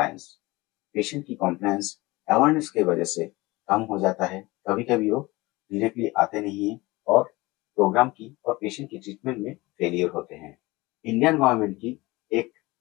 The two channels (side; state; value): right; quieter; 21.6 dB